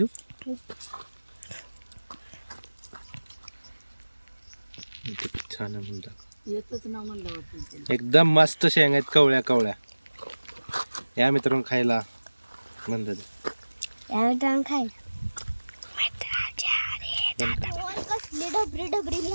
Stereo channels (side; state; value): both; inverted; correlation -1.00